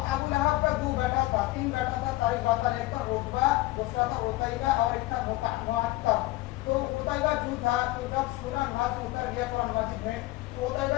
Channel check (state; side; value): quieter; right; 19.1 dB